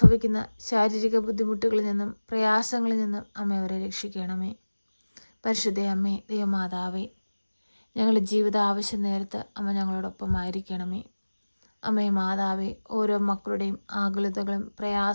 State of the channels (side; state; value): both; inverted; correlation -1.00